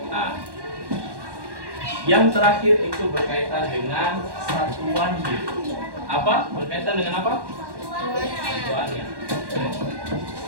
Nah, yang terakhir itu berkaitan dengan satuan hidup. Apa? Berkaitan dengan apa? Satuannya.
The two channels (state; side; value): late; left; 1.1 ms